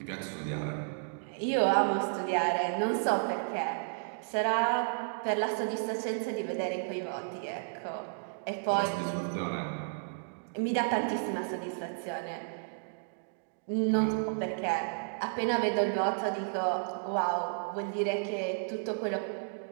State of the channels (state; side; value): silent; left; digital silence